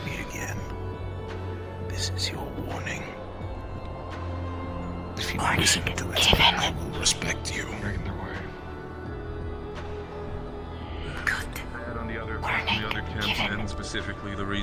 me again. This is your warning. If you listen to it, I will respect you. On the other camps, and specifically the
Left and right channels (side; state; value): both; identical; correlation 1.00